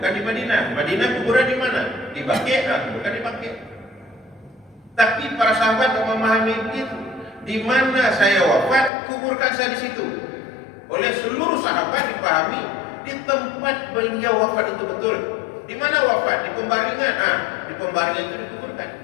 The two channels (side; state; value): right; drops out; at 8.9 s